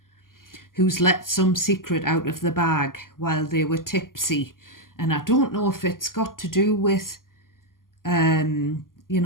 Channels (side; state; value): right; late; 0.91 ms